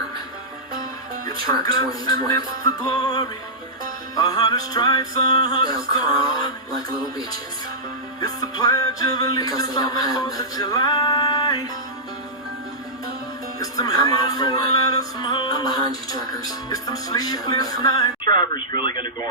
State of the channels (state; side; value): normal; both; correlation -0.14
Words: Truck 2020. They'll crawl like little bitches because they don't have nothing. I'm all for it. I'm behind you, truckers. Drivers really going to go